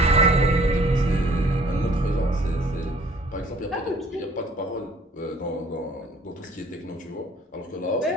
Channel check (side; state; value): both; normal; correlation 0.56